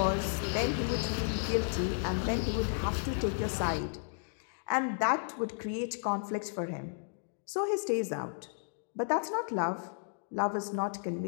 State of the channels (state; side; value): silent; right; digital silence